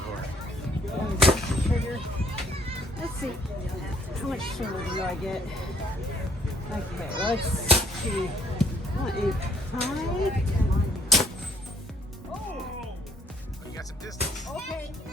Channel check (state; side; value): normal; both; correlation 0.63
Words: Trigger. Let's see. How much sugar do I get? Okay, let's see. I want a high. Oh, you got some distance. Okay.